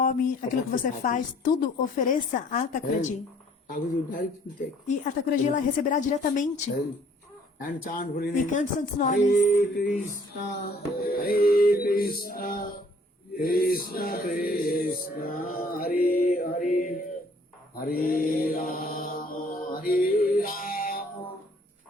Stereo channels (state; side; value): normal; both; correlation 0.59